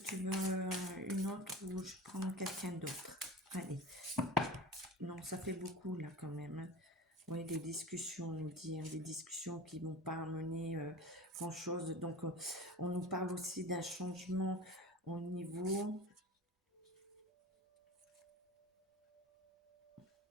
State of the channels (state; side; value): normal; both; correlation 0.33